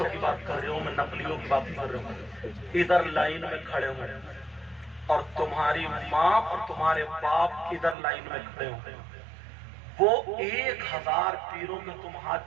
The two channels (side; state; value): left; drops out; at 8.0 s